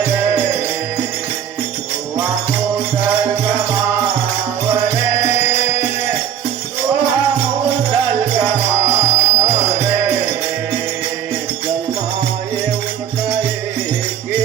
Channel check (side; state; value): left; quieter; 9.3 dB